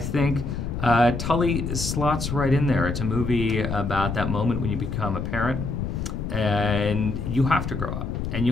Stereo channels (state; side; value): noise; left; rumble, 4 dB below the sound